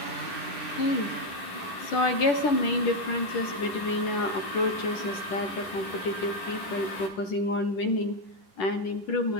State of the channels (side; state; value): right; late; 11 ms